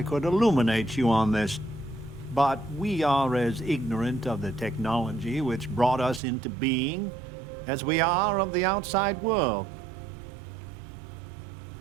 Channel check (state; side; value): drops out; left; at 6.2 s